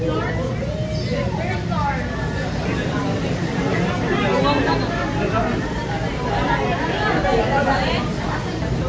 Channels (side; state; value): both; identical; correlation 1.00